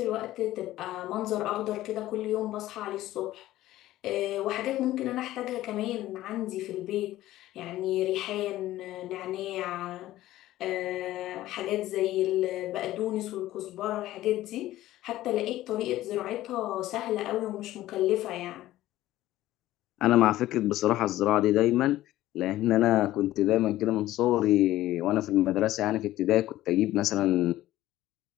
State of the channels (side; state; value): right; quieter; 15.1 dB